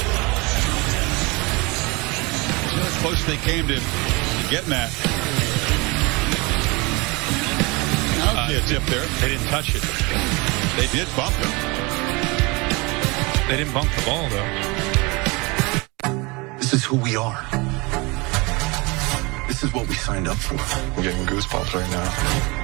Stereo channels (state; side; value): quieter; left; 26.5 dB